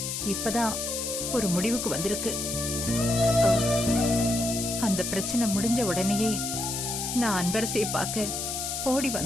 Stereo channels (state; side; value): noise; left; hiss, 3 dB below the sound